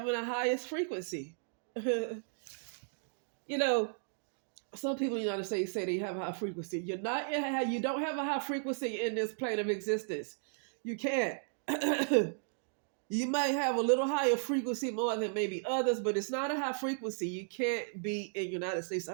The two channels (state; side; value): silent; left; digital silence